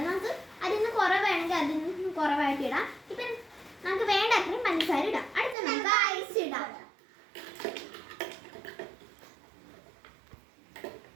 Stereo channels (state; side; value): drops out; left; at 5.6 s